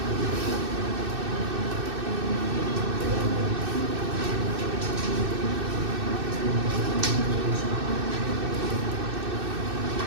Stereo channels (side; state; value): left; late; 2.6 ms